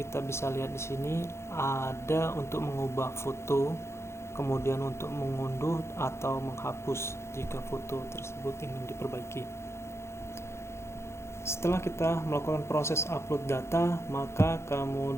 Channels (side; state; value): right; late; 0.13 ms